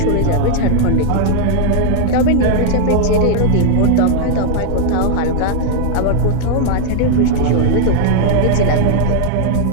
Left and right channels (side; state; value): both; different; correlation 0.00